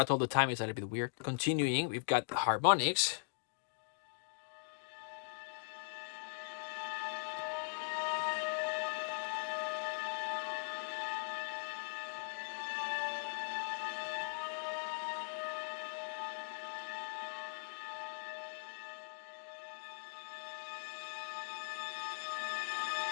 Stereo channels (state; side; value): silent; right; digital silence